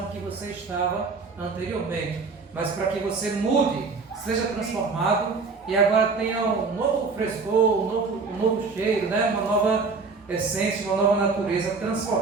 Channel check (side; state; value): left; quieter; 4.4 dB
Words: que você estava anteriormente, mas para que você mude seja transformado e agora tenha um novo frescor, um novo cheiro, né? Uma nova essência, uma nova natureza